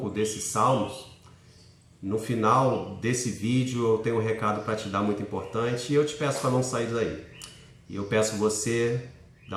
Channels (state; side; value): identical; both; correlation 1.00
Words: desses salmos, no final desse vídeo eu tenho um recado para te dar muito importante e eu te peço para não sair daí. E eu peço você